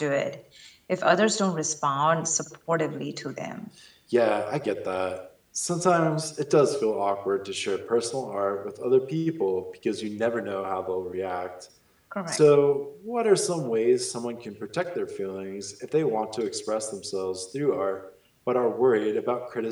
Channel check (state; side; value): identical; both; correlation 1.00